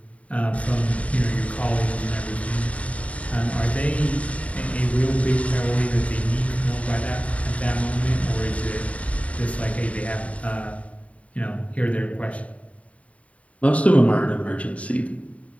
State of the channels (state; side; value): late; right; 0.067 ms